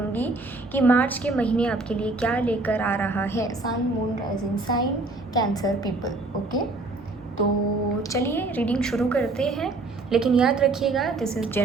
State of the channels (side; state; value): left; quieter; 3.2 dB